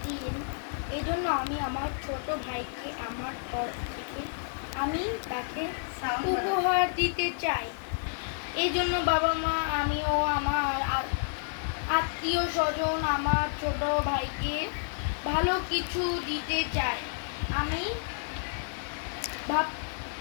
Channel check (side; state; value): right; silent; digital silence